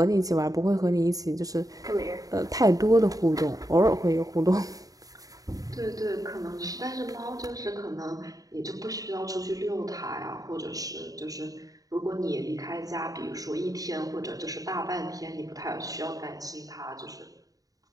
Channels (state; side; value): late; left; 0.17 ms